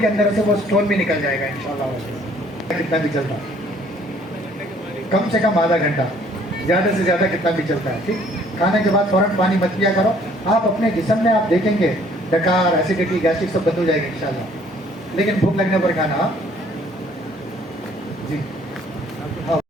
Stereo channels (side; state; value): both; normal; correlation 0.59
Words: अंदर से वो स्टोन भी निकल जाएगा इंशाल्लाह। कितना भी चलता, कम से कम आधा घंटा, ज़्यादा से ज़्यादा कितना भी चलता है। ठीक, खाने के बाद फ़ौरन पानी मत पिया करो। आप अपने जिस्म में आप देखेंगे डकार, एसिडिटी, गैस्ट्रिक सब बंद हो जाएगा इंशाल्लाह। लेकिन भूख लगने पर खाना जी हाँ,